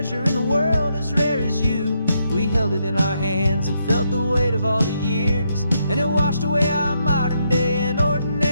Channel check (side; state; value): both; inverted; correlation -0.78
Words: in the world as rare as you. We held it in our hands and felt the weight of all the years, and it washed away our modern day and